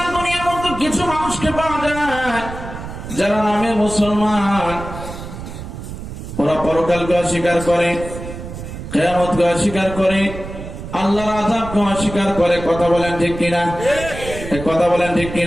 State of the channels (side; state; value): right; noise; rumble, 10 dB below the sound